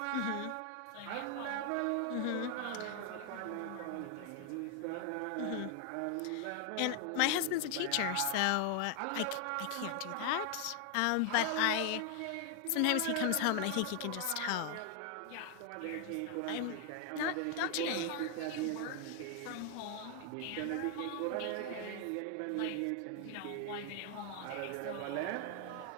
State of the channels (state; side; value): different; both; correlation 0.00